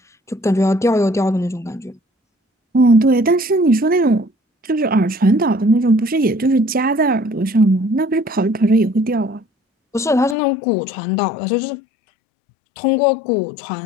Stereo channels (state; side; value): drops out; right; at 10.4 s